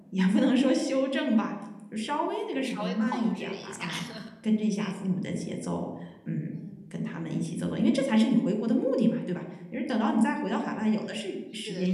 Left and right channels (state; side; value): identical; both; correlation 1.00